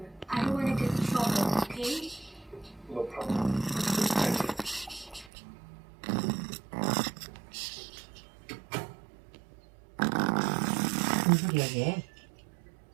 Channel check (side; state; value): left; drops out; at 5.3 s